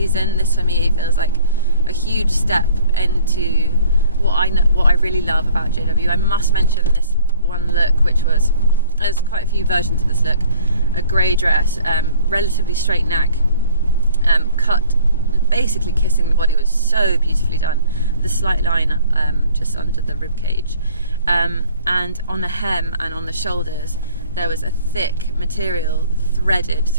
this for me feels like a huge step into what I really love about JW. I must mention this one look, which was, there's quite a few versions of this look, a grey dress, relatively straight neck, cut basically kissing the body, was so beautifully done, the slight line just under the rib cage, and on the hem and on the shoulders there was a thick material threaded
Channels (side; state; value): both; inverted; correlation -0.53